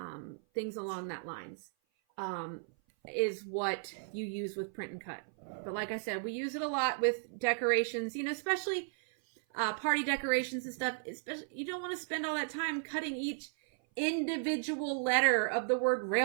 things along that lines, is what you use with print and cut. But like I said, we use it a lot with decorations, especially party decorations and stuff. Especially, you don't want to spend all that time cutting each individual letter of the word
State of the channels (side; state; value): left; silent; 54 dB below the other